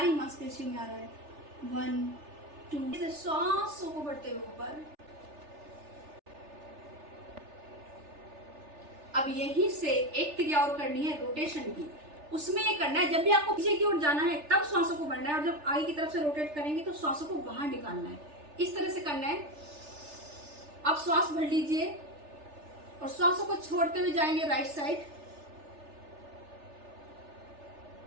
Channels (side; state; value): left; late; 3.4 ms